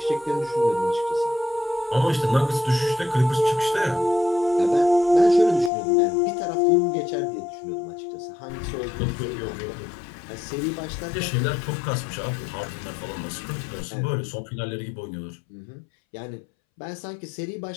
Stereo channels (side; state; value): right; drops out; at 5.7 s